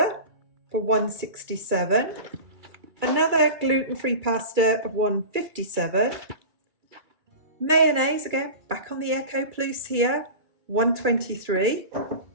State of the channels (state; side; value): late; left; 2.3 ms